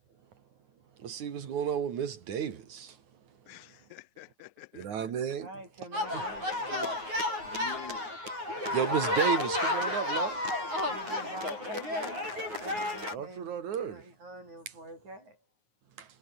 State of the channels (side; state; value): left; late; 9.5 ms